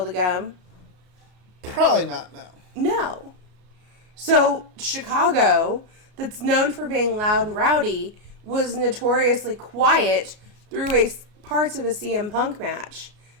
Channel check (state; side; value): late; left; 33 ms